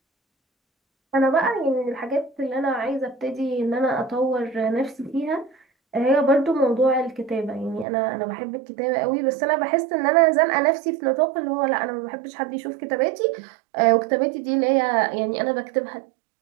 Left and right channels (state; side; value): drops out; left; at 7.9 s